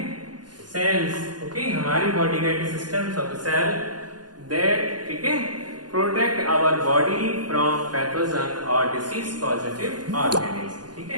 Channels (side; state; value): left; late; 0.69 ms